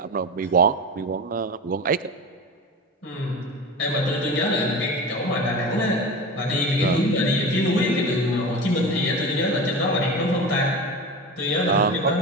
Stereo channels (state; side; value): normal; both; correlation 0.29